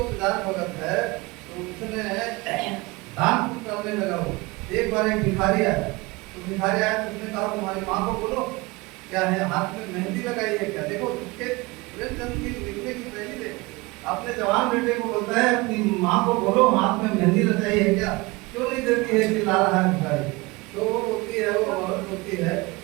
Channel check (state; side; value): quieter; left; 23.6 dB